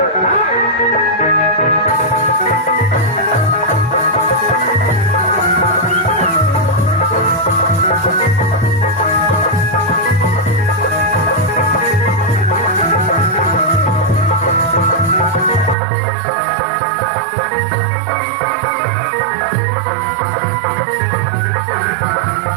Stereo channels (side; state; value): left; drops out; at 15.8 s